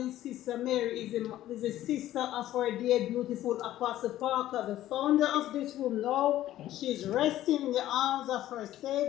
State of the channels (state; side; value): quieter; right; 13.7 dB